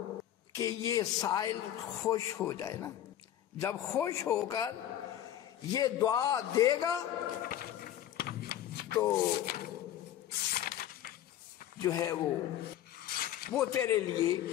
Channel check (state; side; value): quieter; right; 11.7 dB